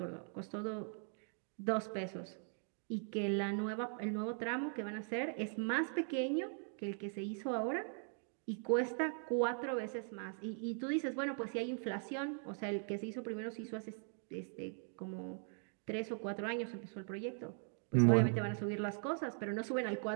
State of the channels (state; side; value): silent; left; 51 dB below the other